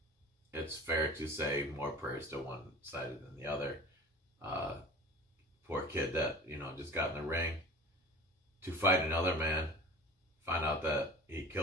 it's fair to say more prayers to one side than the other. Poor kid that, just got in the ring to fight another man, find out that he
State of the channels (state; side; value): normal; both; correlation 0.38